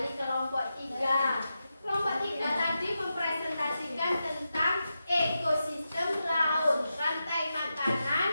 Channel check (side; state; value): both; inverted; correlation -0.89